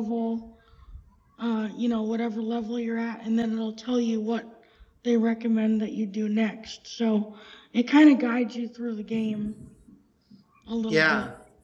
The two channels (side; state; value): both; identical; correlation 1.00